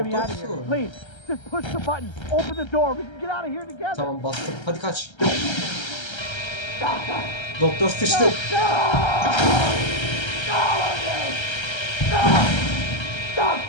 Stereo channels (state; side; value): late; right; 1.3 ms